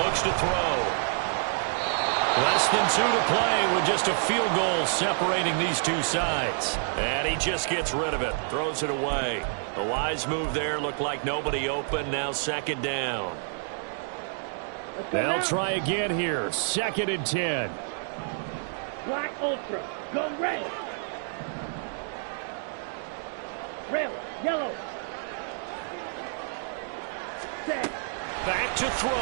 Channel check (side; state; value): left; silent; digital silence